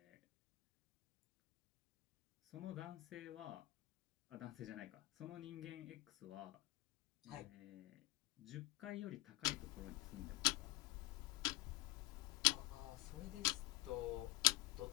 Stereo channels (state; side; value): quieter; right; 20.0 dB